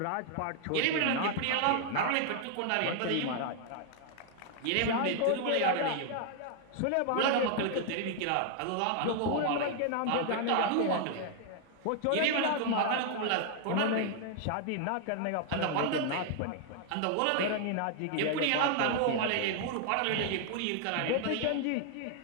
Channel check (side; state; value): both; different; correlation 0.00